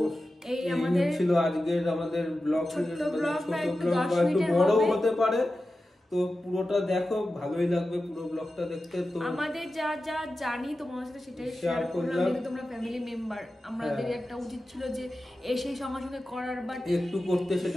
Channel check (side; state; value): both; normal; correlation 0.93